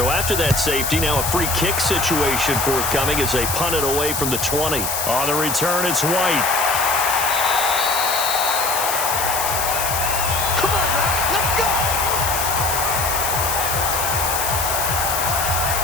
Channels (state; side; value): noise; left; hiss, 2 dB below the sound